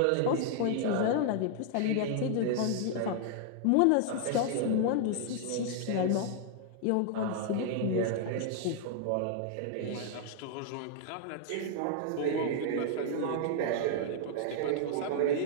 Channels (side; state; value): both; different; correlation -0.01